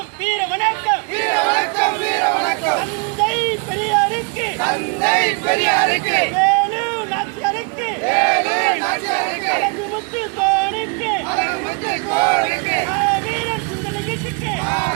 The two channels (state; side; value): quieter; left; 34.1 dB